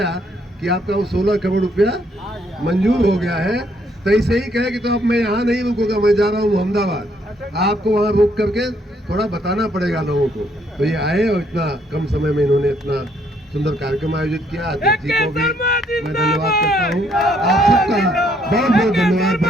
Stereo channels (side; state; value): both; normal; correlation 0.69